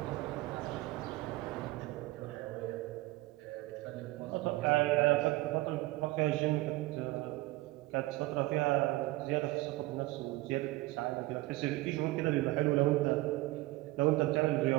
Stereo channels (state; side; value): quieter; left; 19.6 dB